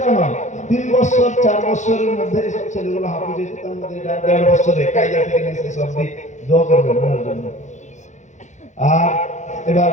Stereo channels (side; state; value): right; late; 0.35 ms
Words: নয়, 3 বছর 4 বছরের মধ্যে সব ছেলেগুলো হাফিজ হয়েছে। তার মধ্যে এটা 1.5 বছরে কায়দা থেকে নিয়ে সব দিক দোয়া করবেন ওনার জন্য। আর এবার